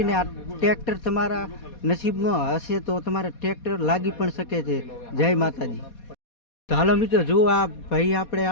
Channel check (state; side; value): late; right; 4.2 ms